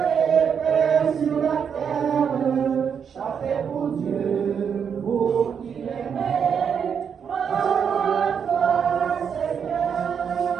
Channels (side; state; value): left; quieter; 7.2 dB